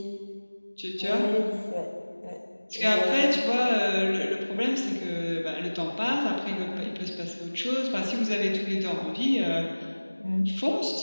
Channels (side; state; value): both; inverted; correlation -1.00